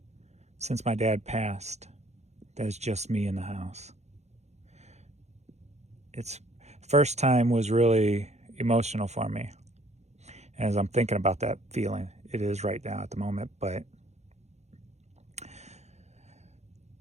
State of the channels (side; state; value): left; late; 0.32 ms